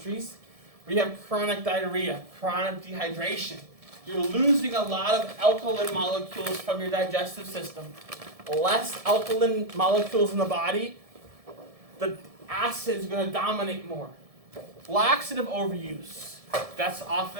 We have chronic diarrhea, chronic dehydration. You're losing a lot of alkaline molecules from your digestive system. Less alkaline molecules in the body, the acid is going to dominate more. Laxative overuse.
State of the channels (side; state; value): left; late; 1.7 ms